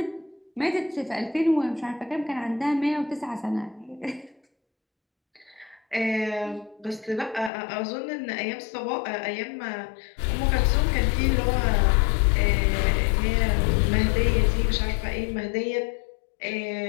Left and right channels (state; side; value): drops out; right; at 7.5 s